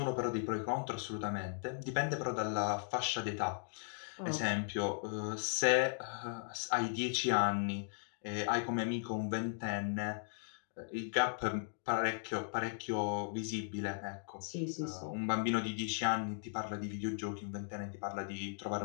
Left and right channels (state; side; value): silent; right; digital silence